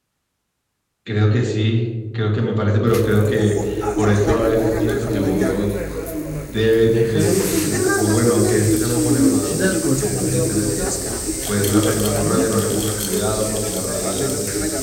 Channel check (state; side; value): identical; both; correlation 1.00